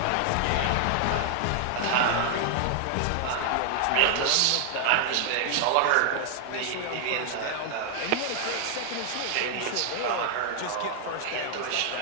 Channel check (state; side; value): different; both; correlation 0.00